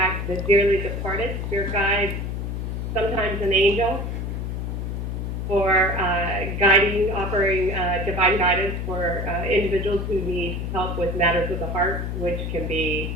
the dearly departed, spirit guides, sometimes an angel, for offering divine guidance for individuals who need help with matters of the heart, which can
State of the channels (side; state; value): left; noise; hum, 3 dB below the sound